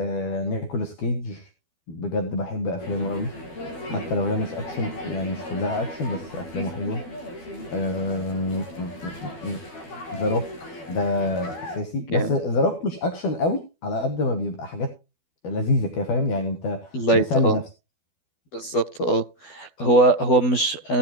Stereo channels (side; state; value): right; late; 12 ms